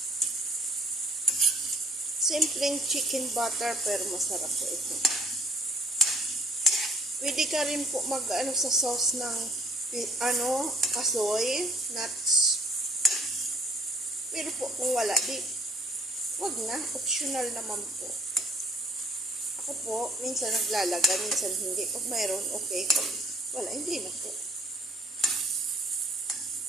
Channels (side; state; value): both; normal; correlation 0.57